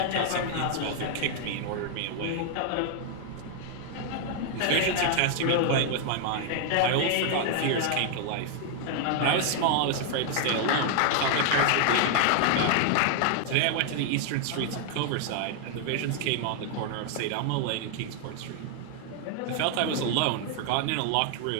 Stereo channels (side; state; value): both; different; correlation 0.00